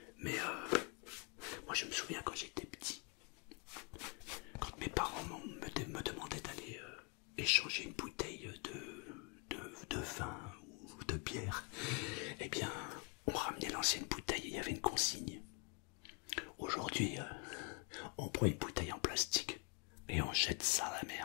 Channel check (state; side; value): quieter; right; 34.7 dB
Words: Mais moi je me souviens quand j'étais petit, quand mes parents me demandaient d'aller échanger une bouteille de vin ou de bière, eh bien on ramenait l'ancienne bouteille et il y avait une consigne. Aujourd'hui on prend une bouteille en plastique et on jette ça à la